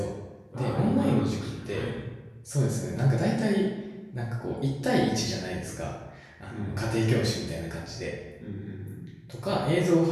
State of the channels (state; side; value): identical; both; correlation 1.00